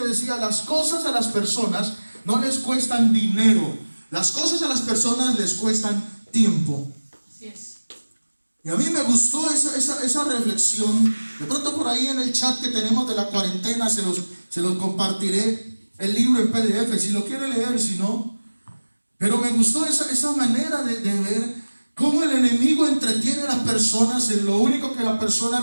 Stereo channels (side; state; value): both; inverted; correlation -1.00